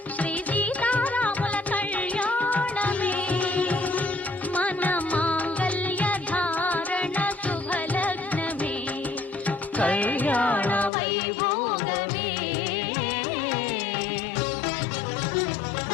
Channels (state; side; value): drops out; right; at 10.9 s